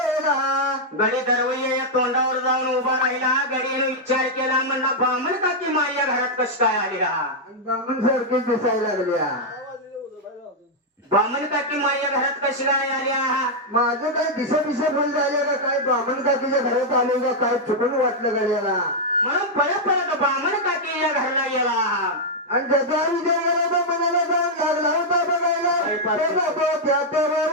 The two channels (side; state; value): both; normal; correlation -0.03